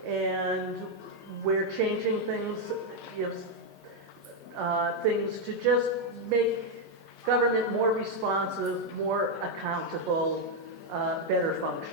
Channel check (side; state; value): both; normal; correlation 0.01